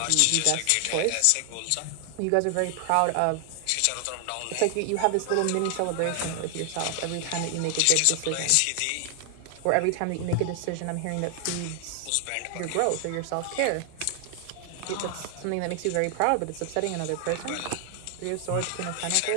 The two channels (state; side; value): different; both; correlation 0.00